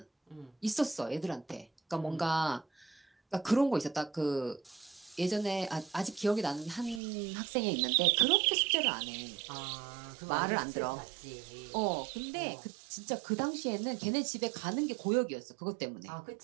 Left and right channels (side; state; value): left; drops out; at 7.0 s